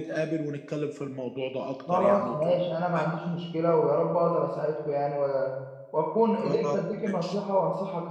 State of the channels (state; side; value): identical; both; correlation 1.00